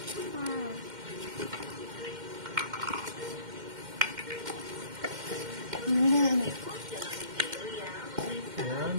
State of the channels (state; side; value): late; left; 2.1 ms